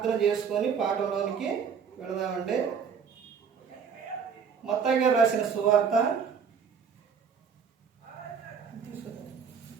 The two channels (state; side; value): quieter; left; 6.6 dB